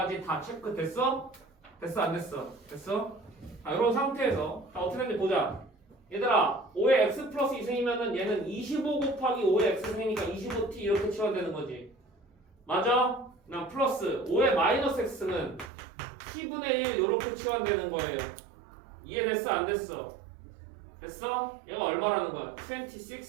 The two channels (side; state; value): left; drops out; at 15.7 s